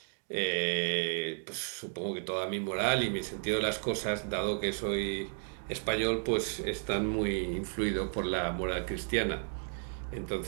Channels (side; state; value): left; silent; 56 dB below the other